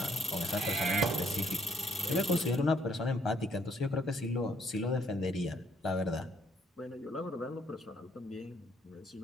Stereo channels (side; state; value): both; normal; correlation 0.68